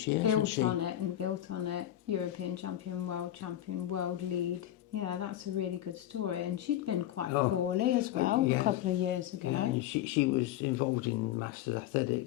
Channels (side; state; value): right; quieter; 12.8 dB